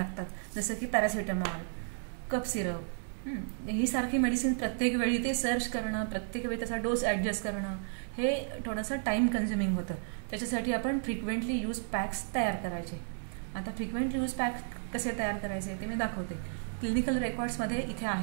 जसं की पॅरासिटामॉल, कफ सिरप, ही सारखी मेडिसिन प्रत्येक वेळी ते सर्च करणं, प्रत्येक वेळी त्याचा डोस ॲडजस्ट करणं हे थोडंसं टाईम कन्झ्युमिंग होतं. त्याच्यासाठी आपण फ्रिक्वेंटली यूज पॅक्स तयार करायचे. आता फ्रिक्वेंटली यूज पॅक कसे तयार करायचे ते मी दाखवते. क्लिनिकल रेकॉर्ड्समध्ये इथे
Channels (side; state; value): left; silent; digital silence